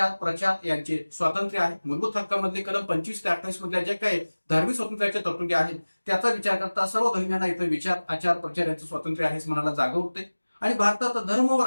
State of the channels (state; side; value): inverted; both; correlation -1.00